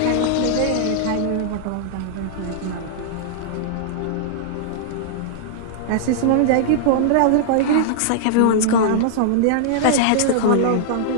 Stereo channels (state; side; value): different; both; correlation -0.01